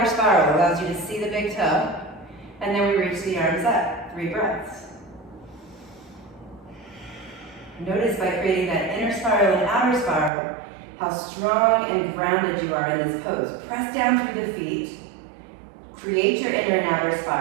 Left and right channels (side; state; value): left; drops out; at 10.3 s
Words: spiral allows you to see the big toe. And then we reach the arms up. 3 breaths. Notice by creating that inner spiral and outer spiral, how strong and grounded you are in this pose. Press down through the feet. Create your inner and outer